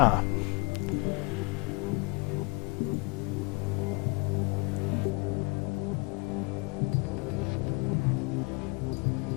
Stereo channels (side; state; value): right; quieter; 28.4 dB